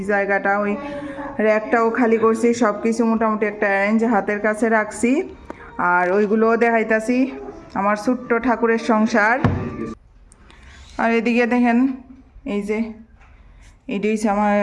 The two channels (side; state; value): both; identical; correlation 1.00